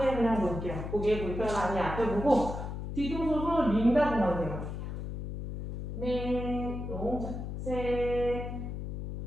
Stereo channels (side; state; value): left; noise; hum, 6 dB below the sound